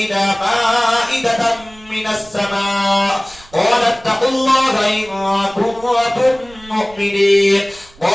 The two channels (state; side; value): noise; right; rumble, 24 dB below the sound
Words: مائدة من السماء قال اتقوا الله إن كنتم مؤمنين